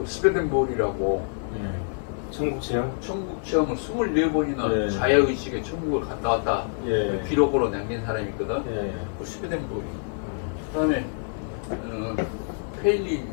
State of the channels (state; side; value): silent; right; digital silence